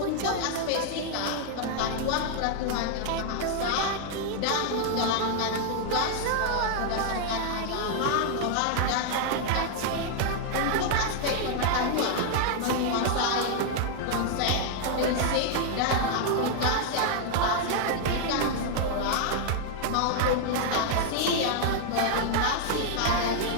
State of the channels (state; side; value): different; both; correlation 0.00